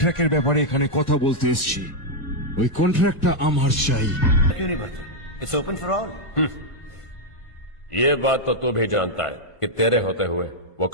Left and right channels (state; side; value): late; right; 1.5 ms